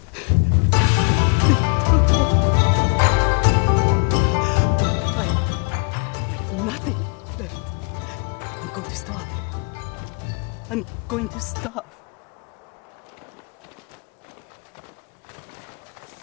I have nothing left. I'm going to starve. I'm going to starve.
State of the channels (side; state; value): right; quieter; 36.0 dB